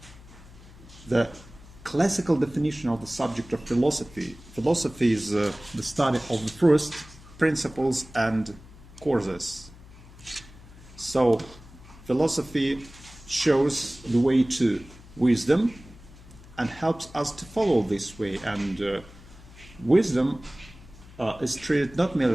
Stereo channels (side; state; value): left; noise; hum, 20 dB below the sound